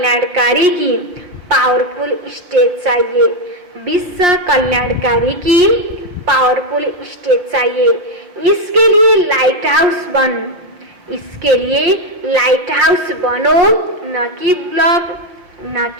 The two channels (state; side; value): late; left; 5.6 ms